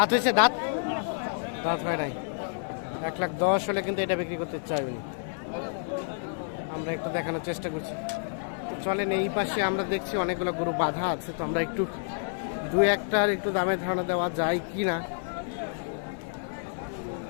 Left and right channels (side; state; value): right; silent; digital silence